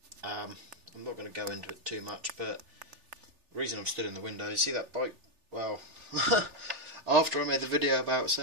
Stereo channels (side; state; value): left; late; 3.4 ms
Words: I'm not going to go into it too much, but the reason I'm stood in the window, you see that bike? Well, after I made the video about